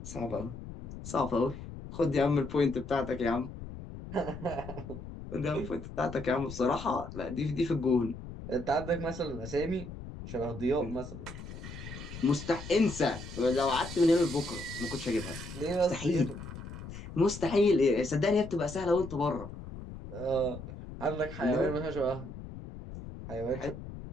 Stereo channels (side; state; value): left; noise; rumble, 11 dB below the sound